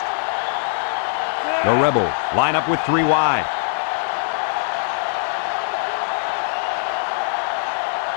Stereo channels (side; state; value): right; silent; 65 dB below the other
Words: The Rebels line up with 3 wide.